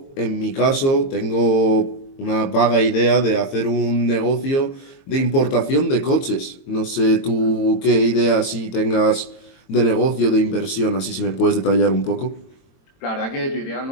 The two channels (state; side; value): late; right; 22 ms